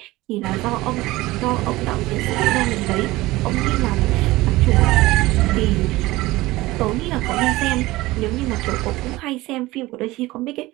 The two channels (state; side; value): quieter; left; 19.2 dB